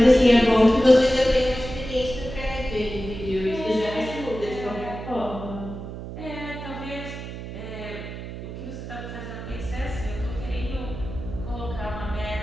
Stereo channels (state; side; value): noise; right; hum, 9 dB below the sound